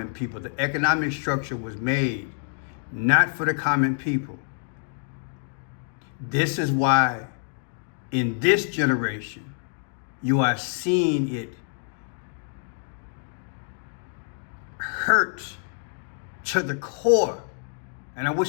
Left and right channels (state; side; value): silent; right; 60 dB below the other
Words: people. The economic structure was made not for the common people. This is why in this generation, you are seeing it hurt to the core. And I